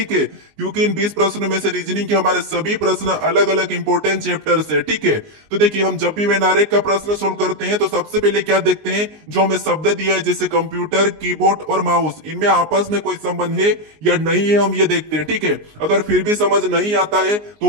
है, क्योंकि इन 20 प्रश्नों में से रीजनिंग के हमारे सभी प्रश्न अलग अलग इंपॉर्टेंट चैप्टर से। ठीक है, तो देखिए हम जब भी वेन आरेख का प्रश्न सोल्व करते हैं तो सबसे पहले क्या देखते हैं, जो हमें शब्द दिया है जैसे कंप्यूटर, कीबोर्ड और माउस, इनमें आपस में कोई संबंध है या नहीं है हम ये देखते हैं। ठीक है, अगर फिर भी समझ नहीं आता है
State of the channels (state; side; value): late; left; 19 ms